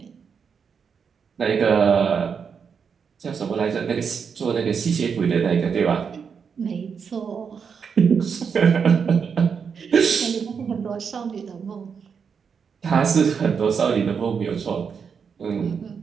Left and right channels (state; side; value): quieter; left; 6.4 dB